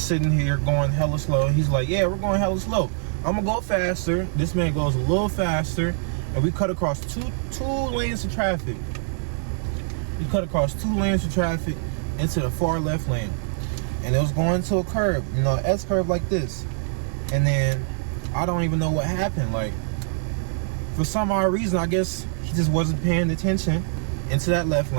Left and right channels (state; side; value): silent; left; digital silence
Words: sitting here going hella slow. He's like, yeah, we're going hella slow. I'm gonna go faster. This man goes a little faster, and we cut across two lanes of traffic. We cut across 2 lanes of traffic into the far left lane, and it was going to a curve, you know, S curve like this. And then I don't even know what happened. Like, for some odd reason, I guess he just wasn't paying attention into that left